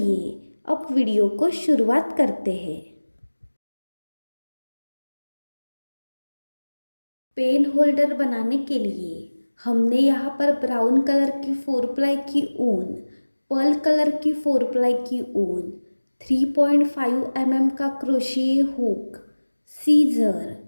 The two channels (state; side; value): inverted; both; correlation -1.00